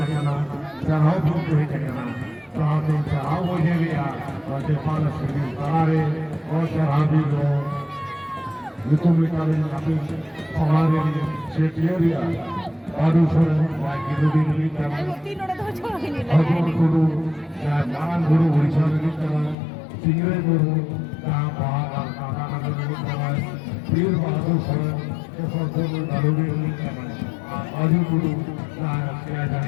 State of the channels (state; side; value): drops out; right; at 19.6 s